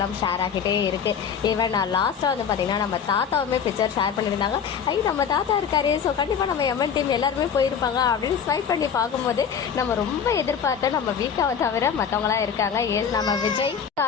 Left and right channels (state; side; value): quieter; right; 7.4 dB